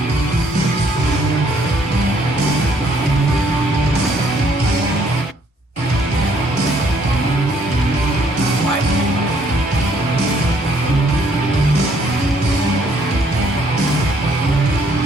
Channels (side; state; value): both; normal; correlation 0.65